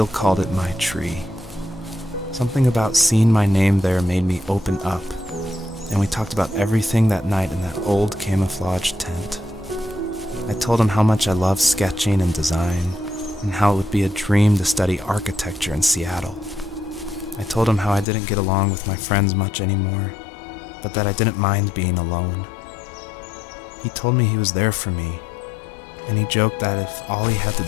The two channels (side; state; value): right; drops out; at 18.1 s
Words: called it my tree. Something about seeing my name there made me open up, and we talked about everything that night in that old camouflage tent. I told him how much I loved sketching and design, and how it would be a dream to study architecture in Seattle. I told him how I didn't get along with my friends much anymore, but that I didn't mind being alone. He told me he was there for me, and he joked that if all he had to